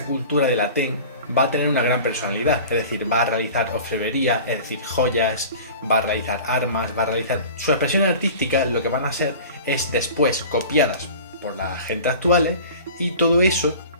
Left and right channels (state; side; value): inverted; both; correlation -0.40